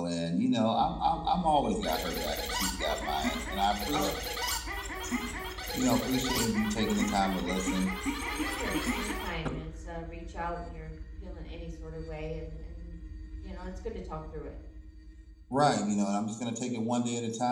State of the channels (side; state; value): both; identical; correlation 1.00